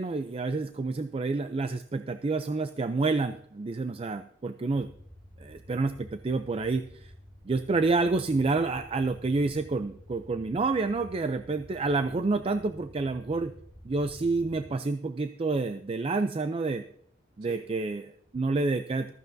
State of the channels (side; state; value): left; quieter; 3.1 dB